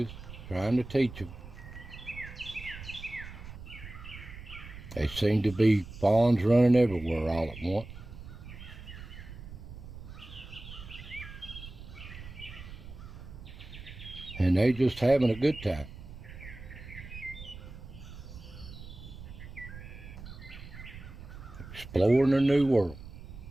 trying to teach them. They seem to be fawns running everywhere all at once. And they just having a good time. Exploring a new world.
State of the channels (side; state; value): right; noise; rumble, 13 dB below the sound